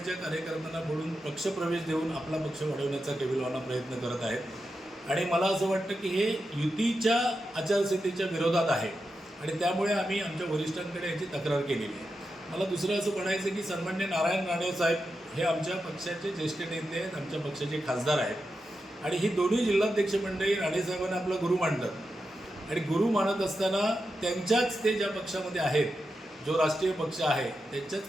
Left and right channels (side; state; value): both; normal; correlation 0.89